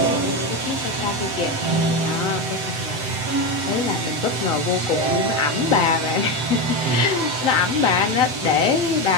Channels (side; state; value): left; late; 7.8 ms